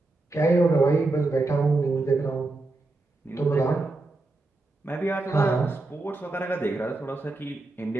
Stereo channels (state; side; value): quieter; left; 3.1 dB